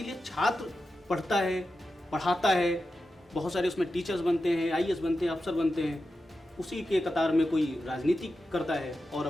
छात्र पढ़ता है, पढ़ाता है, बहुत सारे उसमें टीचर्स बनते हैं, IAS बनते हैं, अफसर बनते हैं। उसी के कतार में कोई राजनीति करता है और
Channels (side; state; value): both; normal; correlation 0.91